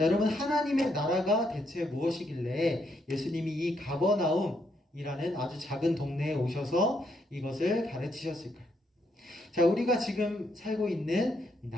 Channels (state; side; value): normal; both; correlation 0.76